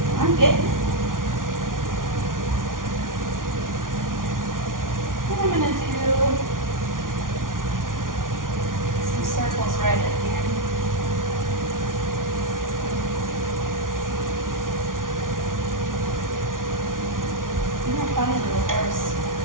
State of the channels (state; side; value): late; left; 0.89 ms